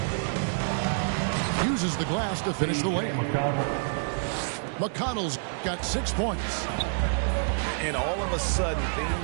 Uses the glass to finish the layup. McConnell's got 6 points. And all of a sudden,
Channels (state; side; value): silent; left; digital silence